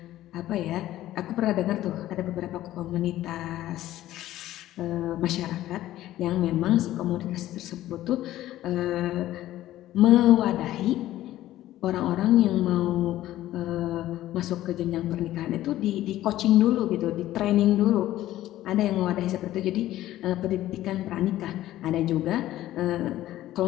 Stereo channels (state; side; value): quieter; right; 14.3 dB